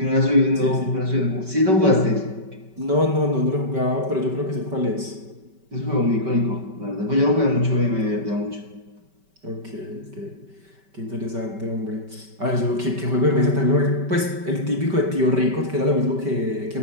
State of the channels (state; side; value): late; left; 5.2 ms